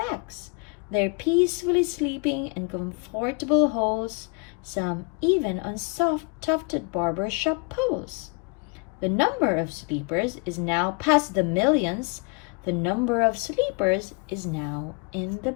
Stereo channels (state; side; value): quieter; right; 33.3 dB